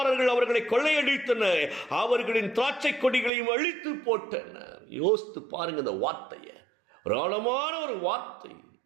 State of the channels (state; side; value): drops out; left; at 3.3 s